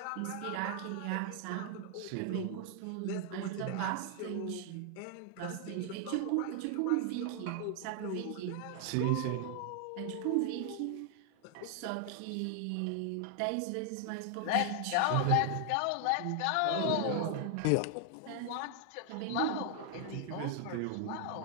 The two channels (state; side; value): different; both; correlation 0.00